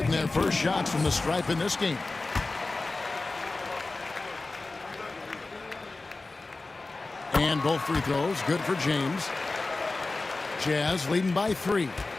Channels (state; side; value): quieter; right; 3.4 dB